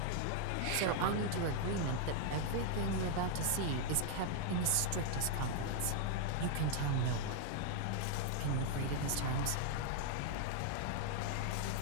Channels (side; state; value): both; different; correlation 0.00